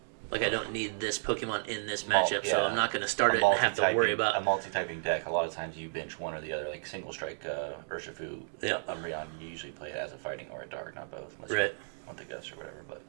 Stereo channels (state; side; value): silent; left; digital silence